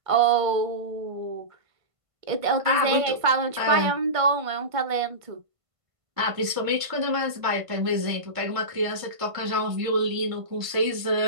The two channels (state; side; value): late; left; 1.5 ms